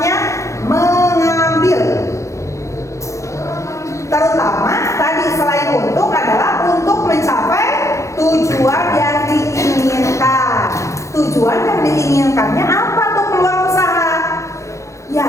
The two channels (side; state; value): right; late; 0.15 ms